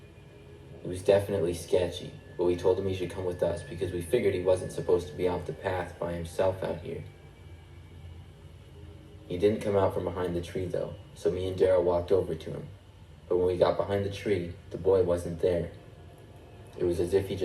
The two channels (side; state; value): both; identical; correlation 1.00